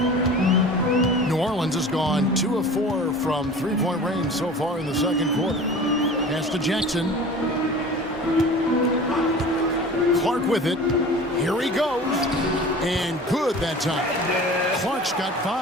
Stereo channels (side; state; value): both; normal; correlation 0.39